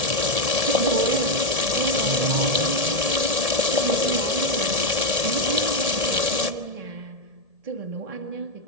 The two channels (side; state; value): left; late; 1.7 ms